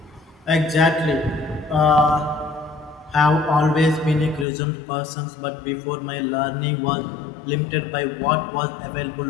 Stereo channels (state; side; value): drops out; right; at 4.5 s